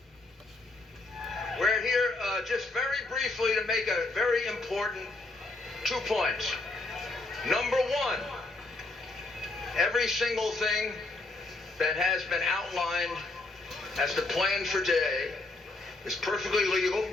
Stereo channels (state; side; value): quieter; right; 3.1 dB